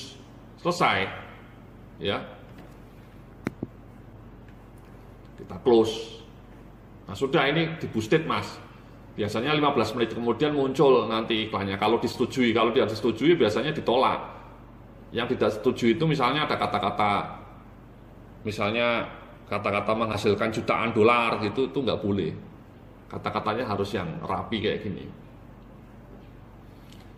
selesai, ya, kita close. Nah, sudah, ini di-boosted Mas. Biasanya 15 menit kemudian muncul nanti iklannya. Kalau disetujui, kalau tidak disetujui biasanya ditolak. Yang tidak setuju itu misalnya ada kata-kata, misalnya kata-kata menghasilkan jutaan dolar gitu, itu nggak boleh. Kata-katanya harus yang rapi kayak gini.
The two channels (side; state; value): both; identical; correlation 1.00